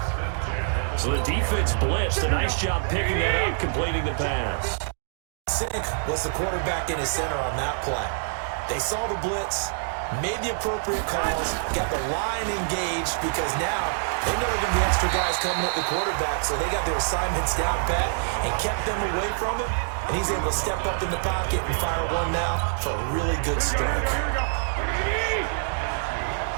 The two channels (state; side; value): silent; left; digital silence